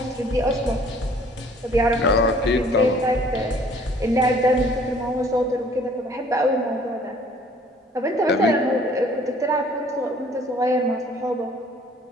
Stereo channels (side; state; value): both; normal; correlation 0.56